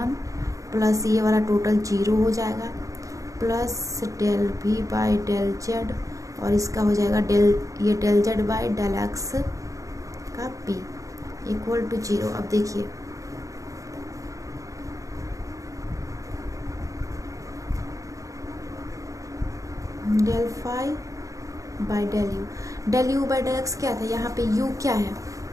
plus ये वाला टोटल 0 हो जाएगा, plus del v by del z, और इसका हो जाएगा ये del z by del x का p इक्वल टू 0। अब देखिए del phi by del u by del x क्या था, यहाँ पे u क्या है,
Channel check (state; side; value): late; left; 0.16 ms